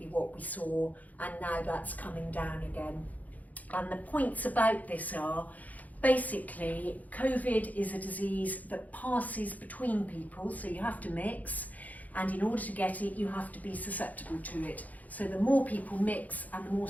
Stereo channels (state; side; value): late; right; 0.077 ms